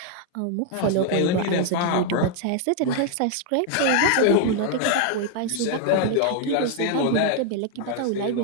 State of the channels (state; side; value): different; both; correlation 0.00